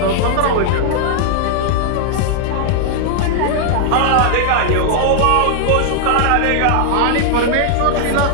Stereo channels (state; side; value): different; both; correlation 0.00